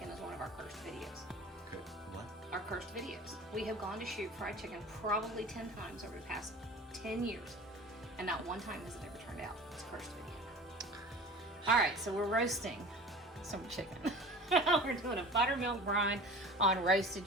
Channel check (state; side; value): normal; both; correlation 0.40